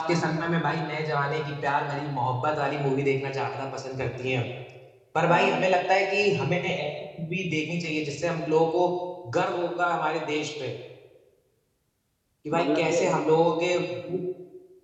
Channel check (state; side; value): identical; both; correlation 1.00